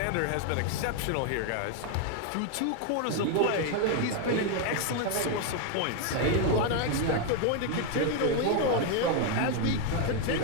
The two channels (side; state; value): both; different; correlation 0.01